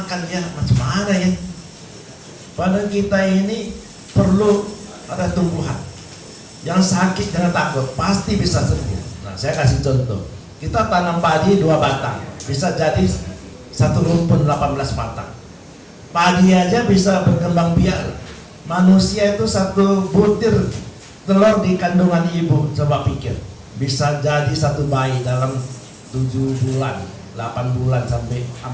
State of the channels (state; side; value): identical; both; correlation 1.00